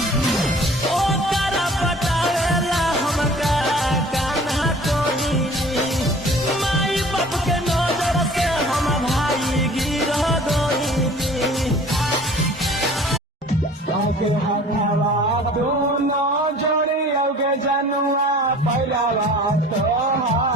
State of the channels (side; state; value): both; normal; correlation 0.47